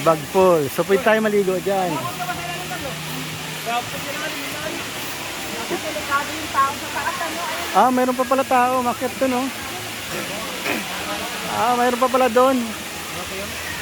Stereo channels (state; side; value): identical; both; correlation 1.00